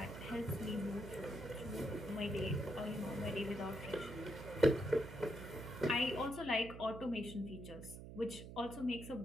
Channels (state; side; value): noise; right; hum, 11 dB below the sound